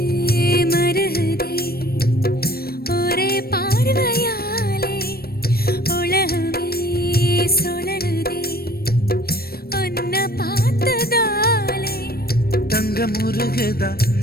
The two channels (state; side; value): late; right; 0.44 ms